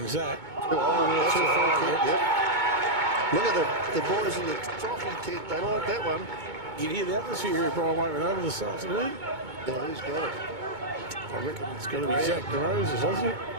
that. That's a too free high, kick, yeah. yep. Look at the boys in the trophy tent. They like that one. You can hear the atmosphere here, Brian Waitman, over this afternoon. Yeah, who's got it? I reckon it's got to be Zach DeRosa, doesn't it?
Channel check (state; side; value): late; left; 2.2 ms